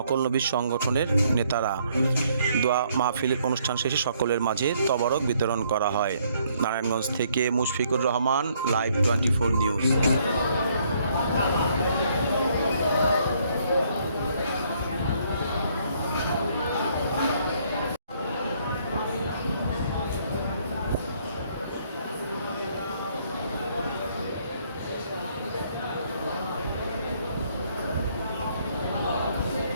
নবী সংগঠনের নেতারা। দোয়া মাহফিলের অনুষ্ঠান শেষে সকলের মাঝে তবরক বিতরণ করা হয়। নারায়ণগঞ্জ থেকে মুশফিকুর রহমান, লাইভ 24 নিউজ।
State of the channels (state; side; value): inverted; both; correlation -0.67